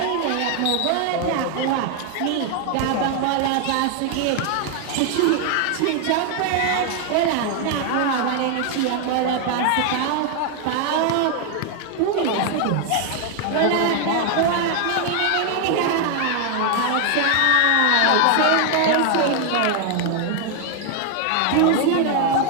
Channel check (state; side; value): different; both; correlation 0.00